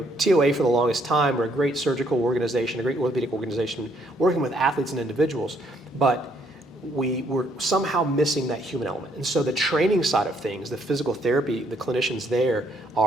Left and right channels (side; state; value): both; normal; correlation 0.69